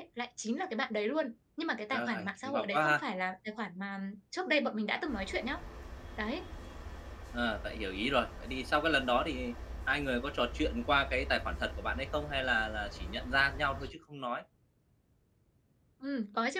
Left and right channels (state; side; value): identical; both; correlation 1.00